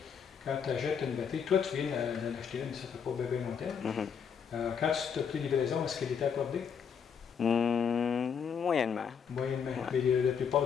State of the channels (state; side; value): quieter; right; 7.0 dB